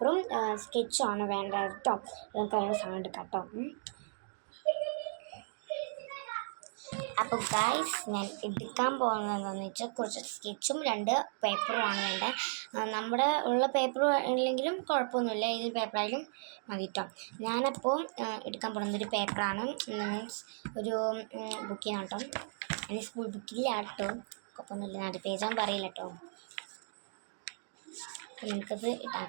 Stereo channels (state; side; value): silent; left; digital silence